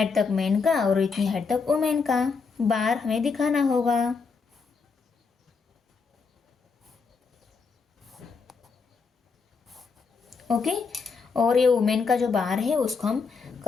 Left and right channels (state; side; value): quieter; right; 5.0 dB